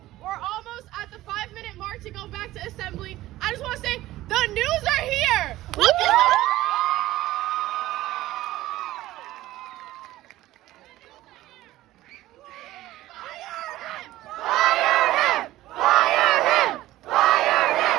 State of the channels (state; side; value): quieter; left; 16.0 dB